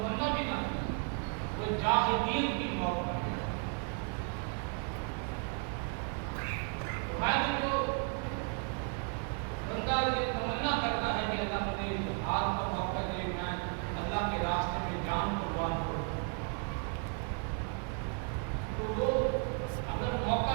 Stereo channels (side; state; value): left; quieter; 39.9 dB